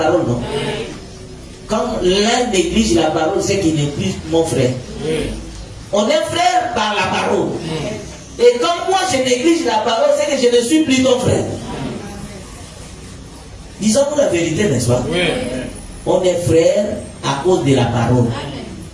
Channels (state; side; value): identical; both; correlation 1.00